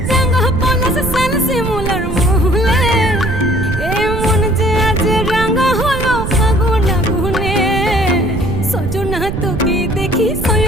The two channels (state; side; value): noise; right; rumble, 5 dB below the sound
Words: রাঙা পলাশ সাল শিমুলার মহুলে এ মন যে আজ রাঙা হলো ফাগুন আগুনে সজনা তোকে দেখি